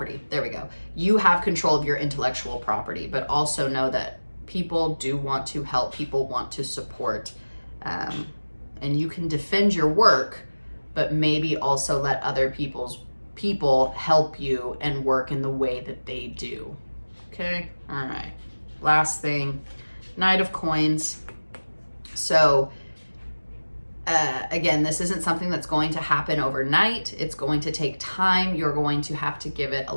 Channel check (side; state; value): both; inverted; correlation -1.00